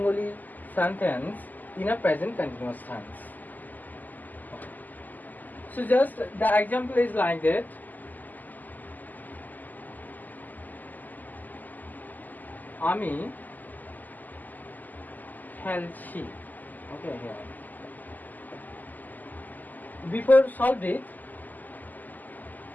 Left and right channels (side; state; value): right; late; 0.083 ms